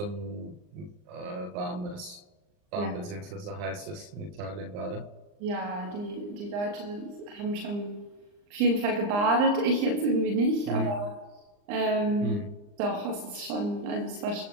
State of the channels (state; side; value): late; left; 39 ms